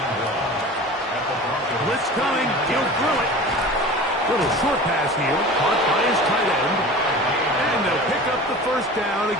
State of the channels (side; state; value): both; normal; correlation 0.37